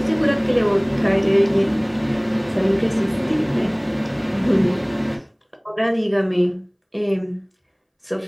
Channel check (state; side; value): identical; both; correlation 1.00